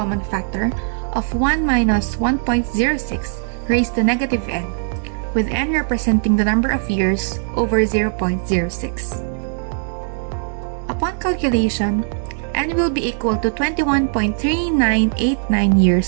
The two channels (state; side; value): silent; left; 60 dB below the other